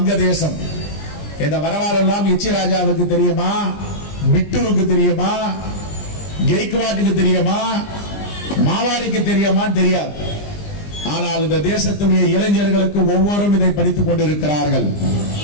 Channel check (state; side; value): late; right; 20 ms